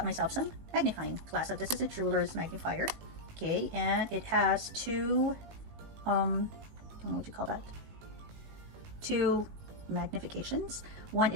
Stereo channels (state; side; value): late; left; 19 ms